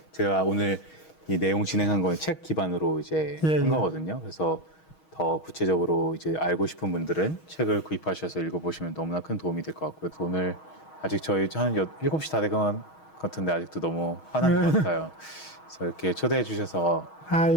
제가 오늘 이 내용 진행한 건 책 기반으로 이제 예, 한 예. 거거든요. 그래서 더 구체적으로 이제 알고 싶은 분들은 책을 구입하셔서 읽어보시면 너무나 큰 도움이 될 것 같고요. 오늘 아직 저희 한 7시 다 된 것 같은데 아직도 너무 화난 것 같아요. 그래서 이렇게 초대해 주셔서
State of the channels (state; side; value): late; right; 6.3 ms